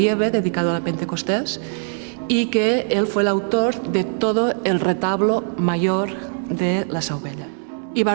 dedicado a la Pentecostés, y que él fue el autor de todo el retablo mayor de la Seu Vella. Y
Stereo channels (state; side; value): silent; left; 65 dB below the other